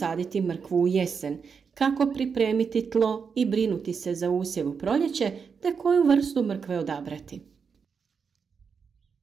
mrkvu u jesen, kako pripremiti tlo i brinuti se za usjev u proljeće, te koju vrstu mrkve odabrati.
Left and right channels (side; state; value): left; quieter; 5.9 dB